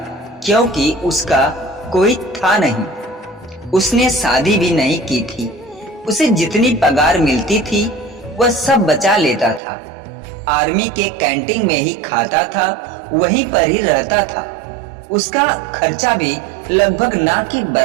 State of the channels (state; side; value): drops out; left; at 9.6 s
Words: क्योंकि उसका कोई था नहीं। उसने शादी भी नहीं की थी। उसे जितनी पगार मिलती थी वह सब बचा लेता था। आर्मी के कैंटीन में ही खाता था, वहीं पर ही रहता था। उसका खर्चा भी लगभग ना के